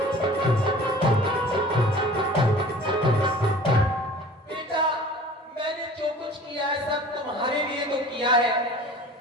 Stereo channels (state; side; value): normal; both; correlation 0.44